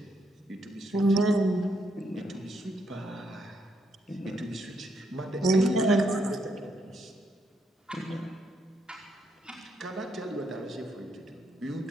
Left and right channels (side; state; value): both; normal; correlation 0.76